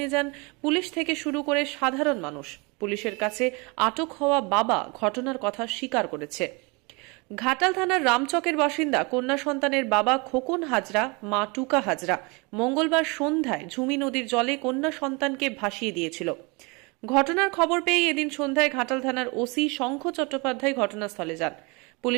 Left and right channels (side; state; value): left; quieter; 28.8 dB